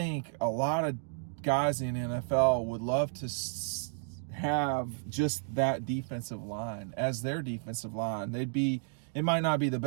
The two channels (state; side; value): silent; left; digital silence